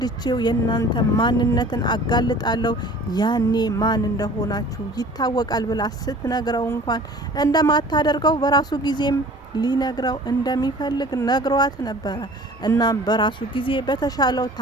የናንተ ማንነትን አጋልጣለሁ፣ ያኔ ማን እንደሆናችሁ ይታወቃል ብላ ስትነግረው እንኳን እንደማታደርገው በራሱ ጊዜም ሊነግረው እንደሚፈልግ ነግሯት ነበረ። እናም በራሱ ጊዜ በተሻለው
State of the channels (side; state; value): both; normal; correlation 0.46